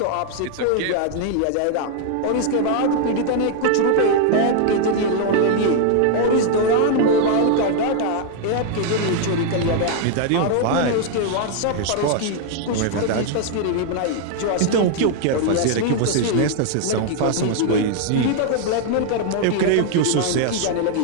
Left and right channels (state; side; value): different; both; correlation 0.00